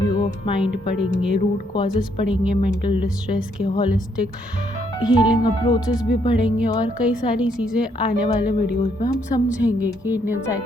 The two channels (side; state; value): both; normal; correlation 0.72